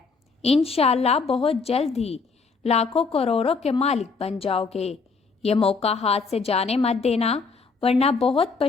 انشاءاللہ بہت جلد ہی لاکھوں کروڑوں کے مالک بن جاؤ گے۔ یہ موقع ہاتھ سے جانے مت دینا ورنہ بہت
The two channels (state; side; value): quieter; right; 4.6 dB